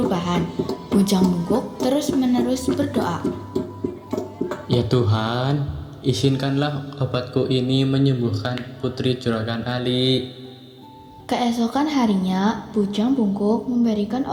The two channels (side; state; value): both; identical; correlation 1.00